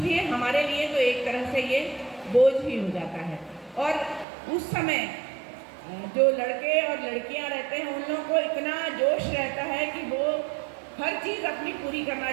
हमारे लिए तो एक तरह से ये बोझ ही हो जाता है। और उस समय जो लड़के और लड़कियां रहते हैं उन लोगों को इतना जोश रहता है कि वो हर चीज़ अपनी पूरी करना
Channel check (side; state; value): left; drops out; at 4.2 s